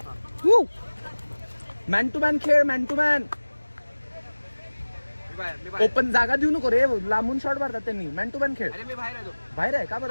मॅन टू मॅन खेळ. Man to man. ओपन जागा देऊ नको रे, लांबून शॉट मारतात त्यांनी. मॅन टू मॅन खेळ. बाहेर आहे का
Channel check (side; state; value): both; inverted; correlation -1.00